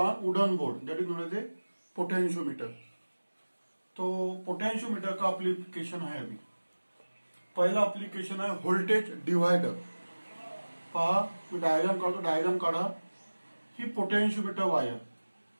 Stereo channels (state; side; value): inverted; both; correlation -1.00